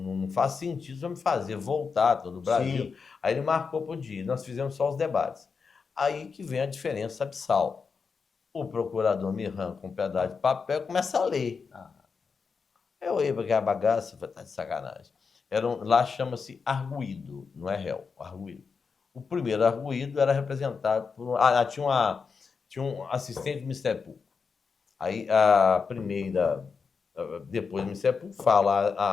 faz sentido você me fazer voltar todo o Brasil. Sim. Aí ele marcou para o dia. Nós fizemos só os debates. Aí que vem a diferença abissal. O procurador me arranca um pedaço de papel e começa a ler. Eu olhei para aquela bagaça e falei, tá de sacanagem. Lá chama-se arguído, não é réu, arguído. O primeiro arguído era representado por... tinha um assistente do Ministério Público. Aí a primeira, depois do Ministério Público, fala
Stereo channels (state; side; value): quieter; right; 5.4 dB